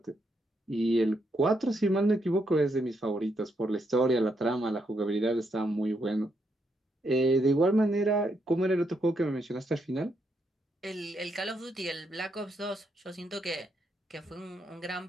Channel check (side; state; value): both; normal; correlation 0.78